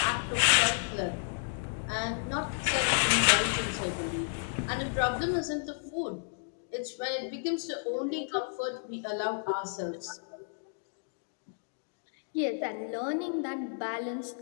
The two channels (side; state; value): right; silent; digital silence